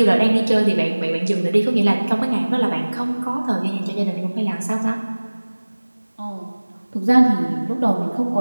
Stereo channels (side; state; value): both; inverted; correlation -1.00